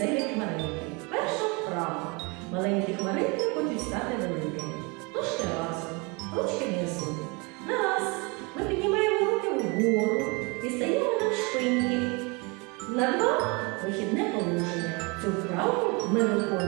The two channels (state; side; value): quieter; left; 29.2 dB